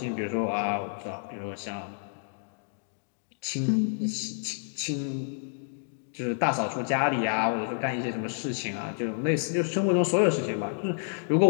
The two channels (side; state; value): right; silent; digital silence